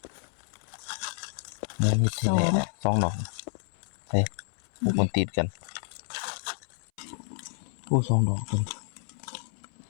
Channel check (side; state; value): right; silent; 58 dB below the other